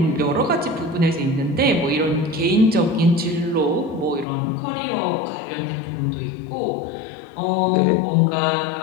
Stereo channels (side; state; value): right; drops out; at 4.2 s